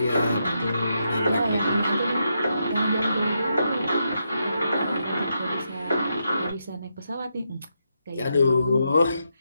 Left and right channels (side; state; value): both; inverted; correlation -0.82